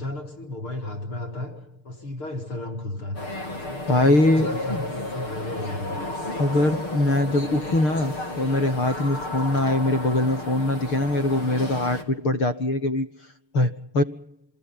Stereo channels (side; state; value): right; late; 6.6 ms